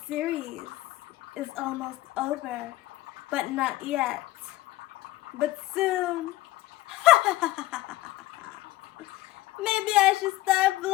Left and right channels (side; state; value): right; quieter; 17.2 dB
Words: series is almost over? But not yet. But soon. Maybe I should start